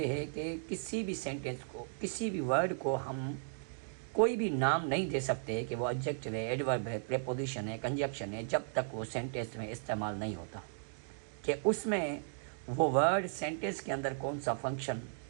है कि किसी भी sentence को, किसी भी वर्ड को हम कोई भी नाम नहीं दे सकते कि वो एडजेक्टिव है, एडवर्ब है, प्रीपोजिशन है, कंजक्शन है, जब तक वो सेंटेंस में इस्तेमाल नहीं होता कि उसमें वो वर्ड सेंटेंस के अंदर कौन सा फंक्शन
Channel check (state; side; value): silent; left; digital silence